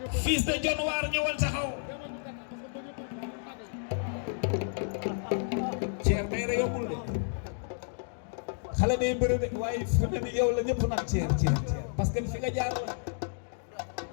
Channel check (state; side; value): silent; right; digital silence